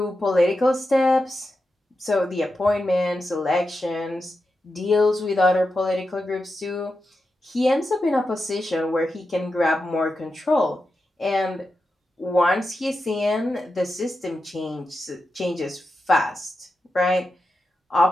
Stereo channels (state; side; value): normal; both; correlation 0.89